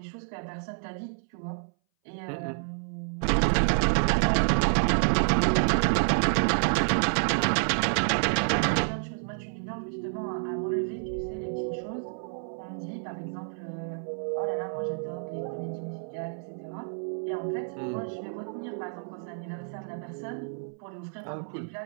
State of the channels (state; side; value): silent; left; 59 dB below the other